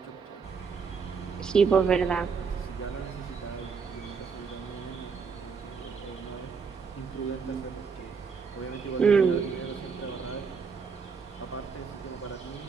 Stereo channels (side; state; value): left; quieter; 5.6 dB